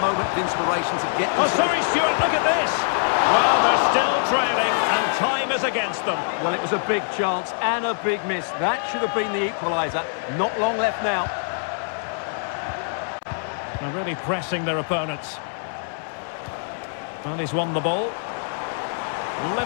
moment of inspiration to get... Oh, sorry, Stuart, look at this. Well, they're still trailing, and time is against them. Well, it was a big chance and a big miss. That should have been the equaliser. Not long left now. They're really pressing their opponents. Well, he's won the ball.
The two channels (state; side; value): silent; right; 63 dB below the other